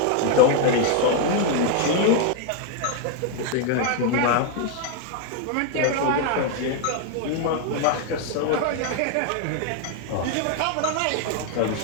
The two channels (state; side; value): different; both; correlation 0.00